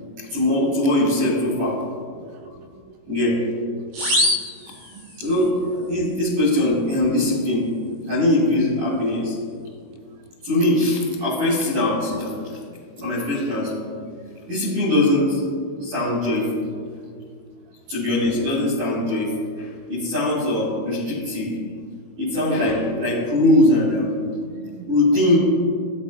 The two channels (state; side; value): late; left; 22 ms